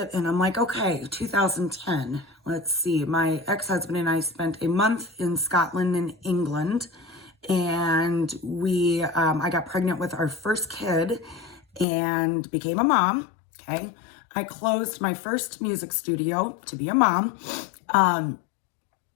and I'm like, okay, 2010, let's see. My ex-husband and I spent a month in Scotland and England, and I got pregnant with our first kid and became a mom. Okay. I closed my first music studio to be a mom.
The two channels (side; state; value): right; drops out; at 11.9 s